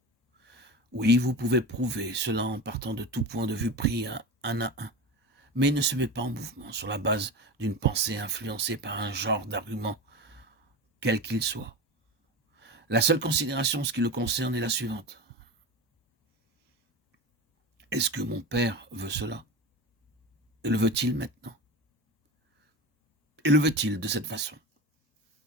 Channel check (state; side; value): normal; both; correlation 0.27